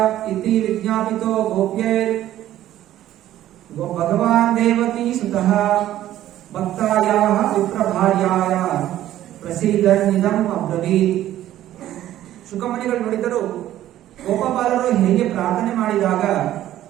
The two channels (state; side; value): quieter; left; 13.1 dB